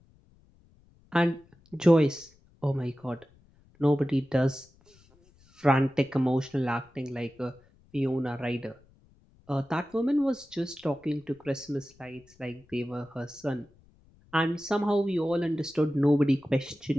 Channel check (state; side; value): noise; left; rumble, 30 dB below the sound